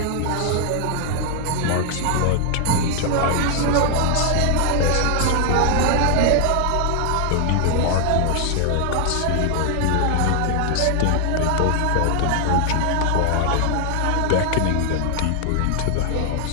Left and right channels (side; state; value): both; different; correlation 0.00